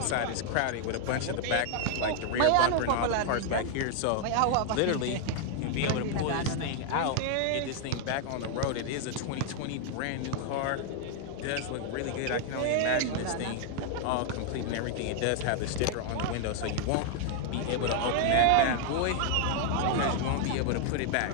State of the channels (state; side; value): different; both; correlation 0.00